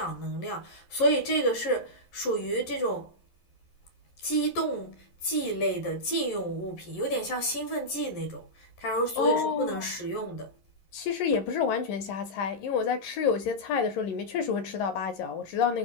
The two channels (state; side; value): late; right; 11 ms